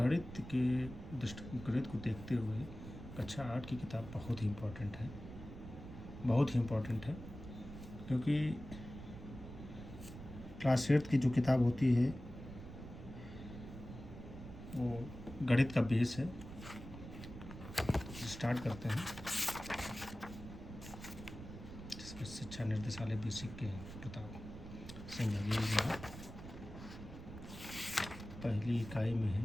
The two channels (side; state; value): right; noise; rumble, 12 dB below the sound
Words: को देखते हुए कक्षा 8 की किताब बहुत ही इम्पोर्टेंट है, क्योंकि क्लास 8 की जो किताब होती है वो गणित का बेस है। स्टार्ट करते हैं। जिसमें शिक्षा निर्देशालय बेसिक के प्रताप सिंह बघेल जी हैं। पहली इकाई में